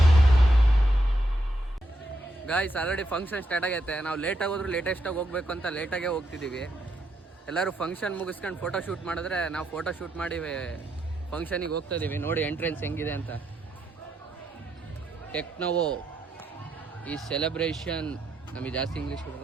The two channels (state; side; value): normal; both; correlation 0.80